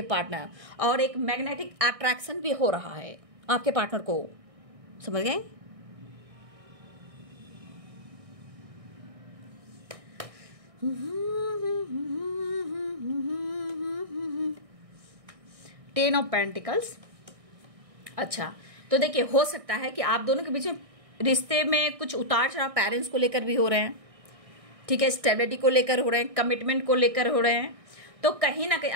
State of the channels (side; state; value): left; late; 1.6 ms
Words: पार्टनर, और एक मैग्नेटिक अट्रैक्शन भी हो रहा है आपके पार्टनर को। समझ गए? Ten of pentacles. अच्छा, तो देखिए हो सकता है कि आप दोनों के बीच में रिश्ते में कुछ उतार चढ़ाव पेरेंट्स को लेकर भी हो रहे हैं। ठीक है, स्टेबिलिटी को लेकर हो रहे हैं, कमिटमेंट को लेकर हो रहे हैं। तो कहीं ना कहीं